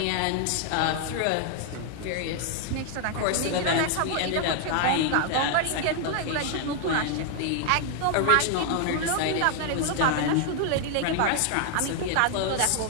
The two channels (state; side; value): different; both; correlation 0.00